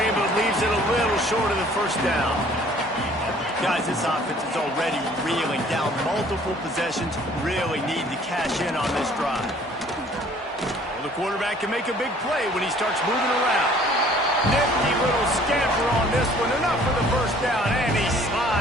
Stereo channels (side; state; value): both; normal; correlation 0.55